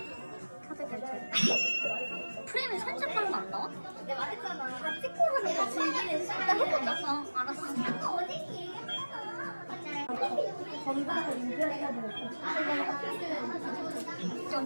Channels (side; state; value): both; inverted; correlation -1.00